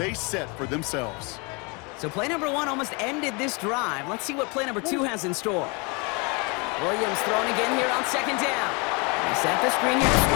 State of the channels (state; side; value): quieter; right; 30.6 dB